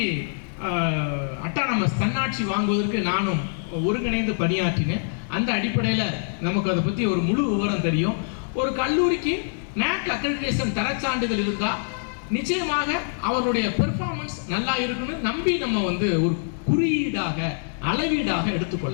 அட்டானமஸ் தன்னாட்சி வாங்குவதற்கு நானும் ஒருங்கிணைந்து பணியாற்றினேன். அந்த அடிப்படையில் நமக்கு அதை பற்றி ஒரு முழு விவரம் தெரியும். ஒரு கல்லூரிக்கு NAAC அக்ரிடிடேஷன் தரச்சான்றிதழ் இருந்தால் நிச்சயமாக அவருடைய பெர்ஃபார்மன்ஸ் நல்லா இருக்குன்னு நம்பி நம்ம வந்து ஒரு குறியீடாக அளவீடாக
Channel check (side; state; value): right; silent; digital silence